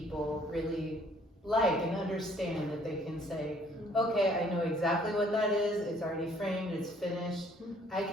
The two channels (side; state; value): both; normal; correlation 0.61